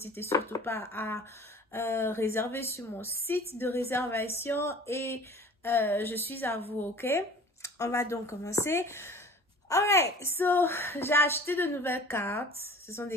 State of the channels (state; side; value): normal; both; correlation 0.44